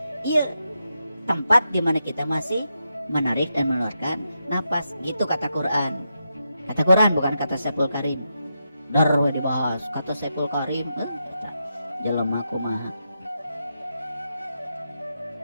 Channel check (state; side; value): inverted; both; correlation -0.85